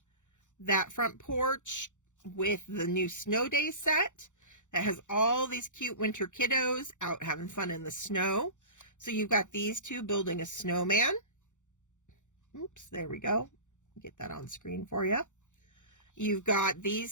that front porch with the new Snow Day set that has all these cute winter kiddos out having fun in the snow. So you've got these two building a snowman. Oops, there we go. Get that on screen for you. You've got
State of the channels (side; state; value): right; late; 0.85 ms